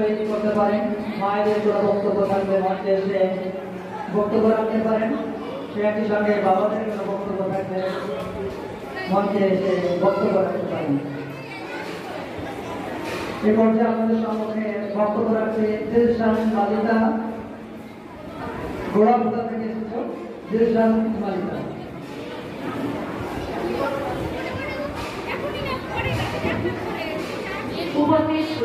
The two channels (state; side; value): identical; both; correlation 1.00